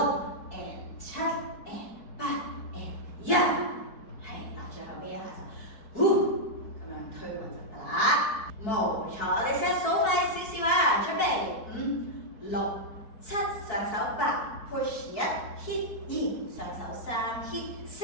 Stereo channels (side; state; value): right; late; 4.6 ms